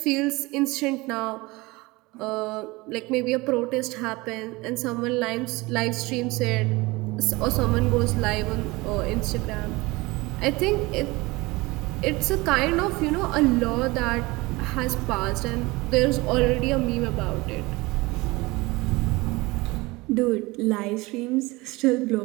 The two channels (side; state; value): left; quieter; 22.6 dB